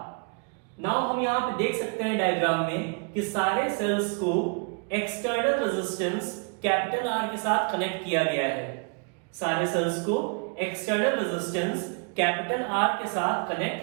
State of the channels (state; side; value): quieter; left; 36.3 dB